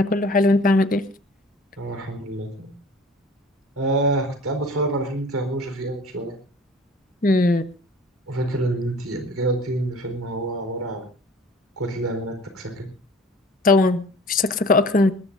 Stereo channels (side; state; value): both; normal; correlation 0.47